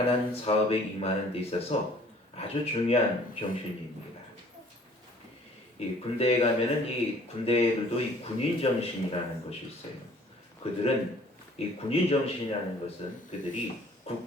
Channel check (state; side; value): normal; both; correlation 0.54